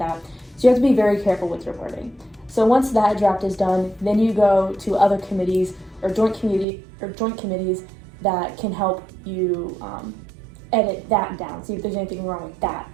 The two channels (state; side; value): drops out; left; at 6.7 s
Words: So you have to be very careful with your wording. So once that draft is done, then you go to other committees or joint committees that can help you edit that down, see if there's anything wrong with that.